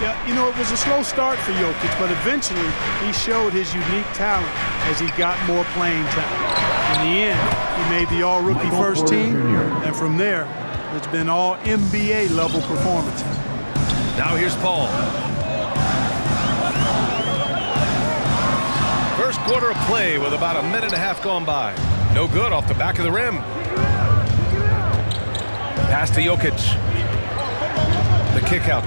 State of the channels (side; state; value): both; inverted; correlation -1.00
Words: Yeah, you know, it was a slow start for Jokic, but eventually he showed his unique talent as he got more playing time. In the end, he made the all-rookie first team, and from there, it's been all NBA level performances. Now here's Paul. First quarter of play with about a minute and a half gone by. No good off the back of the rim. Pass to Jokic. The kick out